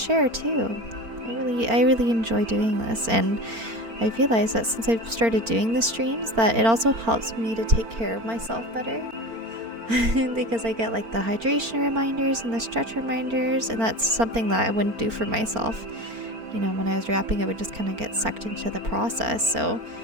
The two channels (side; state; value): left; late; 4.4 ms